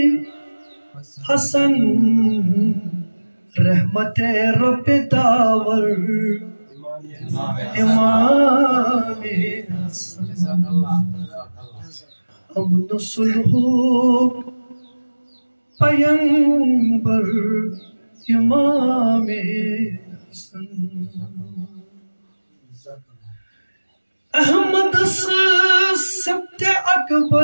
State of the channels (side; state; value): both; inverted; correlation -1.00